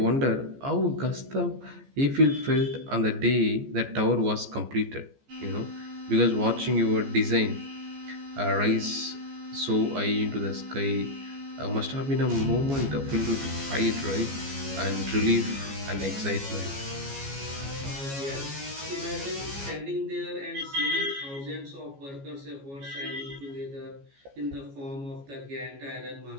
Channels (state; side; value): late; left; 14 ms